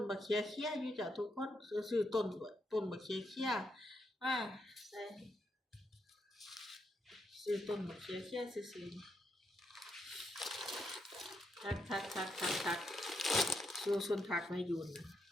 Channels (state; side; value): normal; both; correlation 0.80